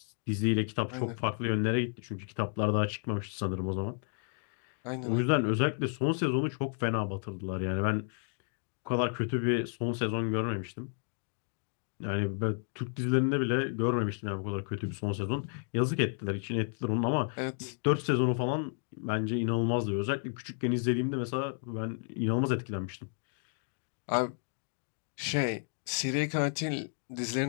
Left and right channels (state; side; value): silent; right; 56 dB below the other